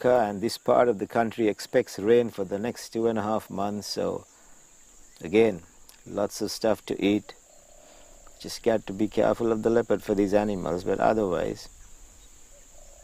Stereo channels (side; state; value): both; identical; correlation 1.00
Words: and this part of the country expects rain for the next 2.5 months, so again, lots of stuff to eat. Just got to be careful of the leopard for these animals, but otherwise